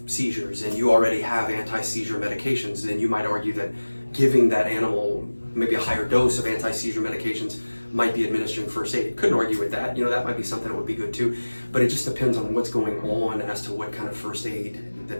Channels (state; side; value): inverted; both; correlation -1.00